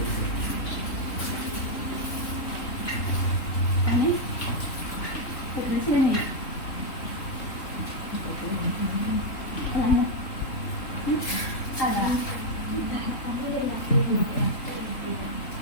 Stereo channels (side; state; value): right; late; 3.4 ms